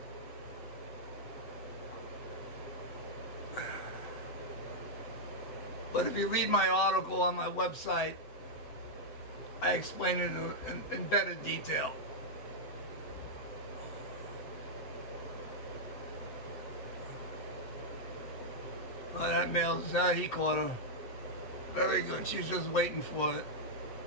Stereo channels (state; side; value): late; right; 7.9 ms